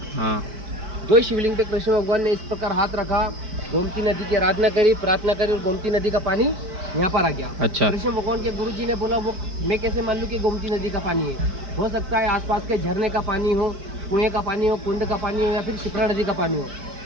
हाँ 2 शिवलिंग पे कृष्ण भगवान ने इस प्रकार हाथ रखा, गोमती नदी की आराधना करी, प्रार्थना करी, और गोमती नदी का पानी यहाँ पर आ गया। अच्छा कृष्ण भगवान के गुरु जी ने बोला वो मैं कैसे मान लूँ कि गोमती नदी का पानी है? हो सकता है आसपास के झरने का पानी हो, कुएं का पानी हो, कुंड का पानी हो, या फिर शिप्रा नदी का पानी हो।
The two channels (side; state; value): left; late; 4.9 ms